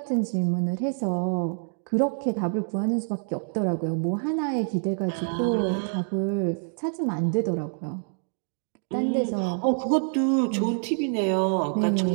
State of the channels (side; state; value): left; silent; 61 dB below the other